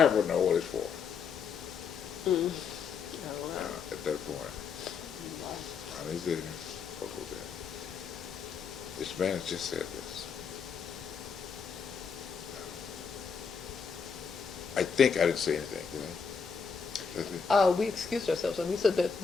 would know what it's for. At that point, I was there. What was that? This man has just said this. I think I didn't say anything, did I? That's it? We excused ourselves and we said that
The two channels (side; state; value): right; quieter; 6.0 dB